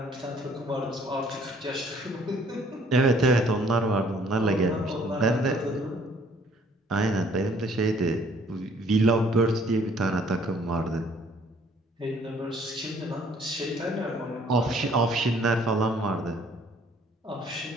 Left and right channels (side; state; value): both; normal; correlation 0.59